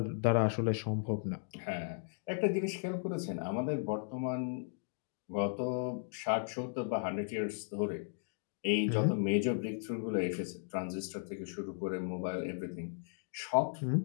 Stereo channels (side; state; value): right; silent; digital silence